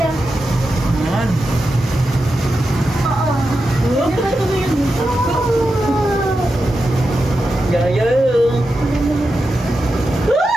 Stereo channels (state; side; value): normal; both; correlation 0.89